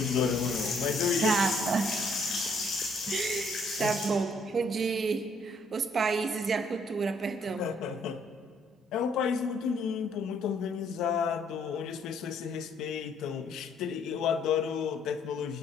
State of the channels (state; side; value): normal; both; correlation 0.66